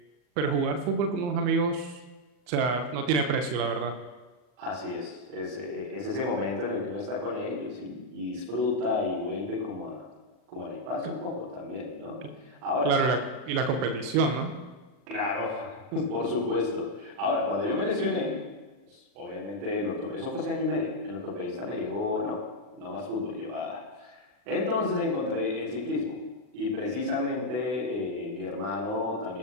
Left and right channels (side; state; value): left; late; 40 ms